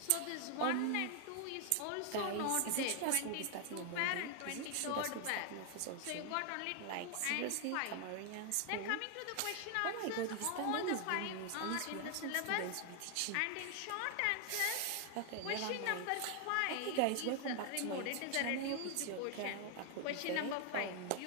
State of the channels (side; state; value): both; different; correlation 0.00